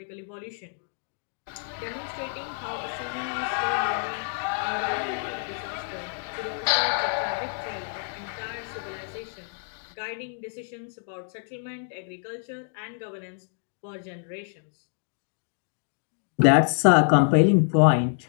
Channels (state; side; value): silent; right; digital silence